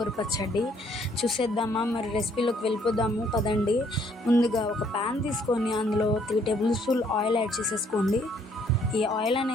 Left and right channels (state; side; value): normal; both; correlation 0.65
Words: పచ్చడి చూసేద్దామా? మరి రెసిపీలోకి వెళ్ళిపోదాము పదండి. ముందుగా ఒక ప్యాన్ తీసుకొని అందులో 3 టేబుల్ స్పూన్ ఆయిల్ యాడ్ చేసేసుకోండి. ఈ ఆయిల్